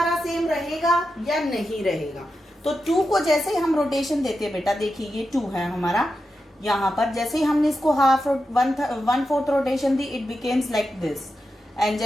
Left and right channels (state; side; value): normal; both; correlation 0.89